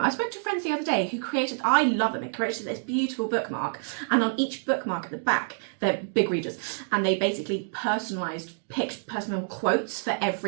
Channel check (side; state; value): left; silent; digital silence